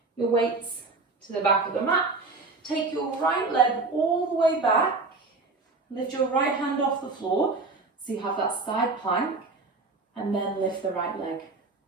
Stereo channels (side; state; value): left; quieter; 3.7 dB